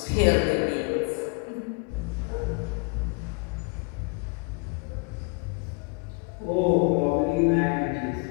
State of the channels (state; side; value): quieter; right; 32.9 dB